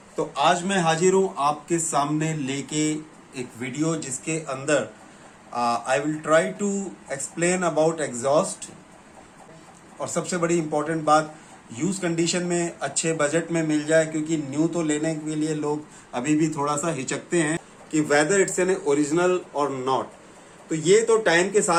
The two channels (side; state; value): both; identical; correlation 1.00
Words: तो आज मैं हाजिर हूं आपके सामने लेके एक वीडियो जिसके अंदर I will try to explain about exhaust. और सबसे बड़ी इंपॉर्टेंट बात, यूज कंडीशन में अच्छे बजट में मिल जाए, क्योंकि न्यू तो लेने के लिए लोग अभी भी थोड़ा सा हिचकते हैं कि वेदर इट्स एन ओरिजिनल और नॉट। तो ये तो टाइम के